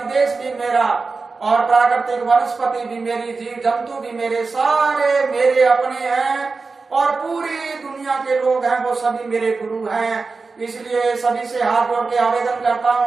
भी मेरा, और प्राकृतिक वनस्पति भी मेरी, जीव जंतु भी मेरे, सारे मेरे अपने हैं, और पूरी दुनिया के लोग हैं वो सभी मेरे गुरु हैं। इसलिए सभी से हाथ जोड़ के आवेदन करता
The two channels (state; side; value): quieter; left; 4.2 dB